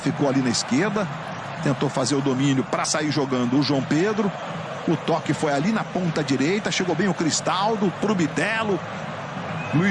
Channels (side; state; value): both; identical; correlation 1.00